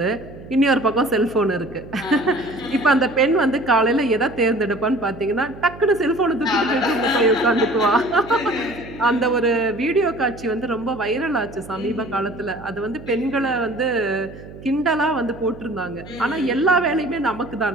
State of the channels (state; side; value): noise; right; hum, 16 dB below the sound